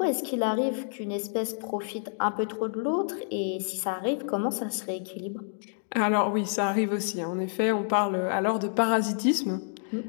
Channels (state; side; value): silent; right; digital silence